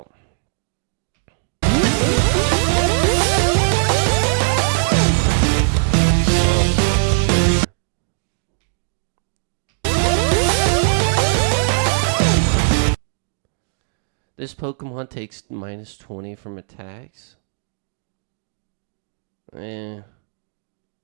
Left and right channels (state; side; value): silent; left; digital silence